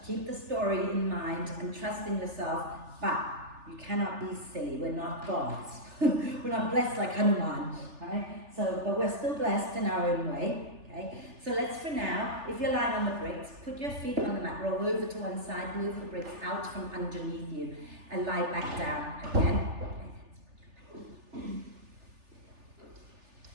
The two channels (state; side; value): late; left; 3.4 ms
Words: keep the story in mind and trust in yourself, but you cannot be silly. We're not gods. We're not blessed like Hanuman, right? So, but we're still blessed in our own way, okay? So let's, for now, if you're lying on the bricks, put your feet on the mat, roll over to one side, move the bricks out from underneath you, and lie back down again.